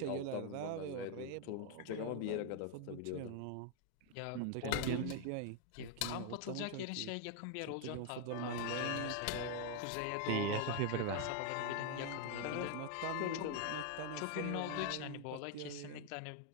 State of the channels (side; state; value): both; different; correlation 0.00